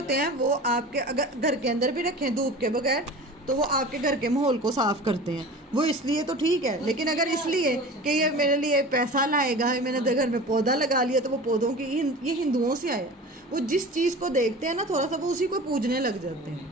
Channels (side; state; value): both; normal; correlation 0.36